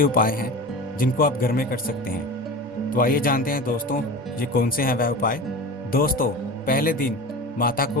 उपाय हैं जिनको आप घर में कर सकते हैं। तो आइए जानते हैं दोस्तों, ये कौन से हैं वह उपाय। दोस्तों, पहले दिन माता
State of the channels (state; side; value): normal; both; correlation 0.32